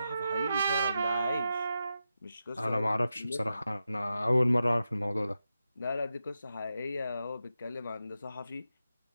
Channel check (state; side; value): inverted; both; correlation -0.89